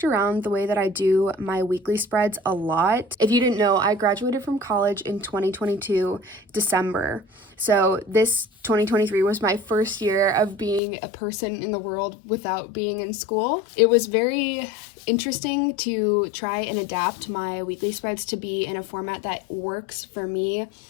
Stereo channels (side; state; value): right; drops out; at 10.8 s